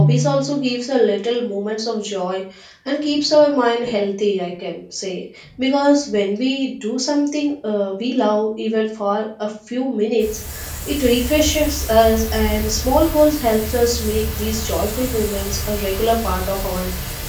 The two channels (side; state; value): both; identical; correlation 1.00